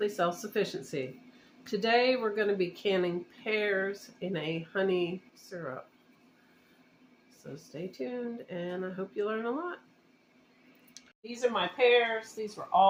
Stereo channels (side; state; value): both; identical; correlation 1.00